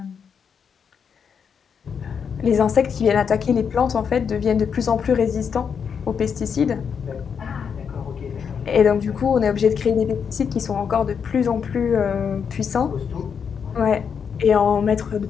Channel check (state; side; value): quieter; right; 6.8 dB